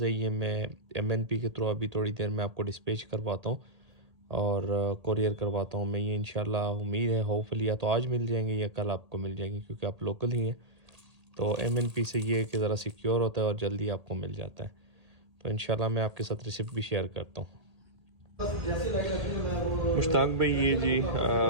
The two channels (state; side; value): late; left; 1.8 ms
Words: है, ये मैं MNP के थ्रू अभी थोड़ी देर में आपको डिस्पैच करवाता हूँ और कोरियर करवाता हूँ मैं। ये इंशाल्लाह उम्मीद है होपफुली या तो आज मिल जाएंगे या कल आपको मिल जाएंगे, क्योंकि आप लोकल ही हैं। तो MNP से ये कि ज़रा सिक्योर होता है और जल्दी आपको मिल जाता है। तो इंशाल्लाह मैं आपके साथ रिसिप्ट भी शेयर करता हूँ। मुश्ताक भाई ये जी